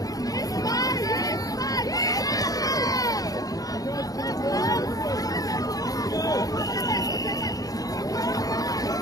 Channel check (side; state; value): right; late; 0.18 ms